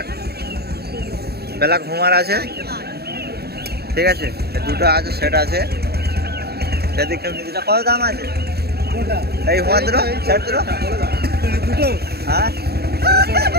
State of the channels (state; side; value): late; left; 0.46 ms